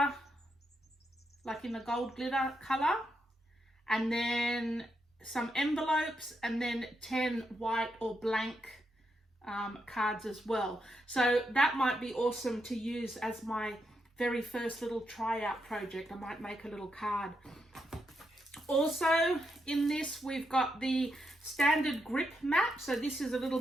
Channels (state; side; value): normal; both; correlation 0.82